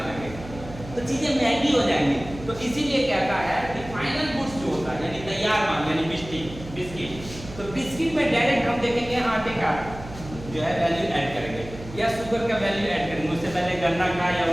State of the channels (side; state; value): right; noise; hum, 14 dB below the sound